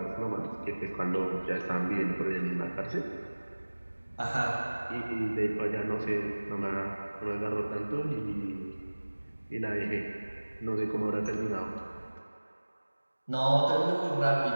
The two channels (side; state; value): both; inverted; correlation -1.00